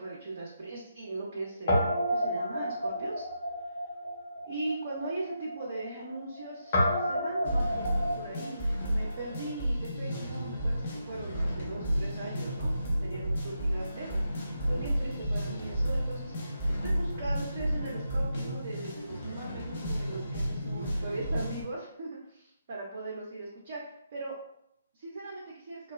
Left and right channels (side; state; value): both; inverted; correlation -0.84